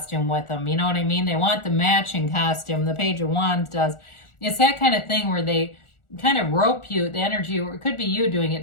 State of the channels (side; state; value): right; late; 1.4 ms